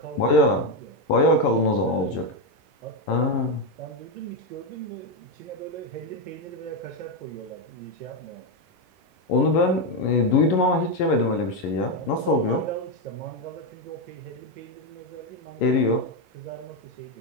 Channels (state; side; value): late; right; 11 ms